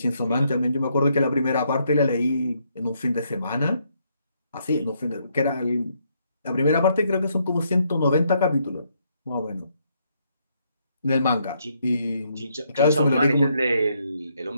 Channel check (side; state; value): both; inverted; correlation -0.74